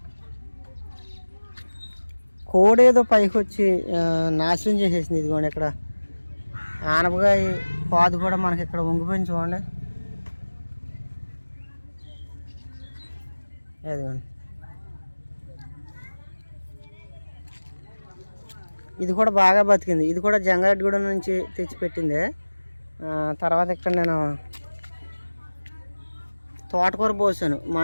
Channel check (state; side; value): inverted; both; correlation -1.00